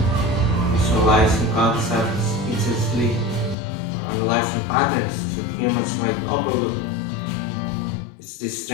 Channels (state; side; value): drops out; right; at 3.6 s